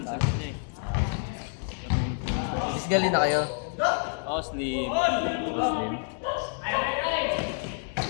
physically na kayo? Oh, slim. Muslim.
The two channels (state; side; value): silent; right; 59 dB below the other